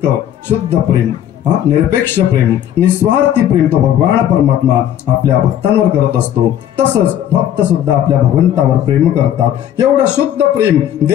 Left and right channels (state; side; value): quieter; right; 10.8 dB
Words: शुद्ध प्रेम, निरपेक्ष प्रेम, निस्वार्थी प्रेम तो भगवान परमात्मा आपल्या भक्तांवर करत असतो. तसंच भक्त सुद्धा आपल्या भगवंतावर प्रेम करतात. एवढं शुद्ध प्रेम